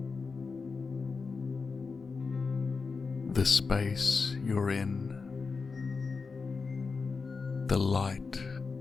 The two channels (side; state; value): right; quieter; 4.7 dB